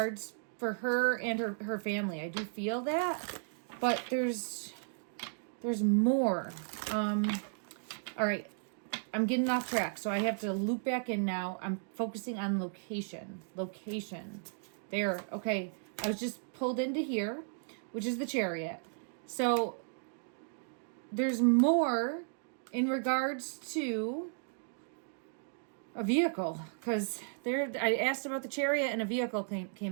for her and her family. I do feel that, but there's more. All right, I'm getting off track, so I have to loop back in now. I'm focusing on location. There, okay. I was just pulled into here, which is the Chariot. So there's more in regards to a vehicle, because I asked about the Chariot and a vehicle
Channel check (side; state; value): left; silent; digital silence